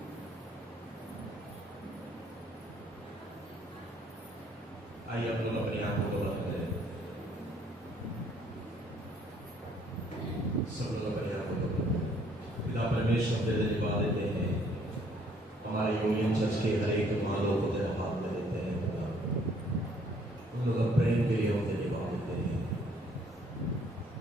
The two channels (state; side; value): normal; both; correlation 0.63